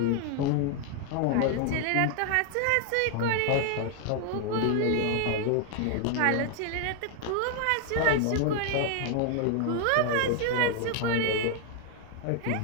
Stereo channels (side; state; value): both; different; correlation 0.00